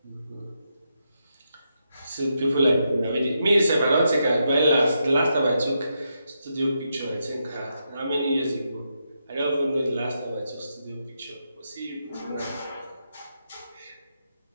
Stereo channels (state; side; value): inverted; both; correlation -0.83